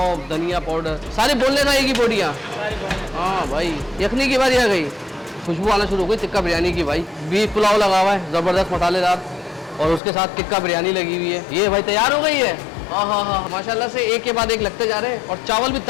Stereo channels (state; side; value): drops out; right; at 10.0 s